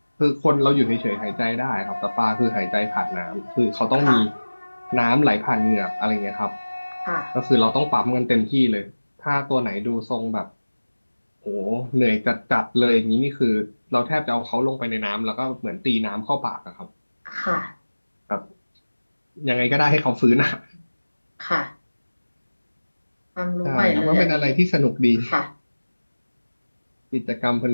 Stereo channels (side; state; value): both; inverted; correlation -1.00